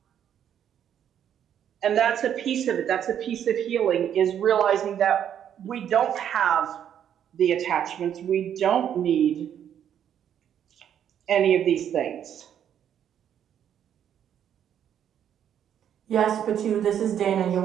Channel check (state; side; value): quieter; left; 9.5 dB